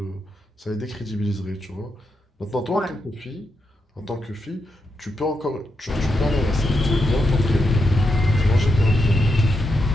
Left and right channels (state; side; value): normal; both; correlation 0.84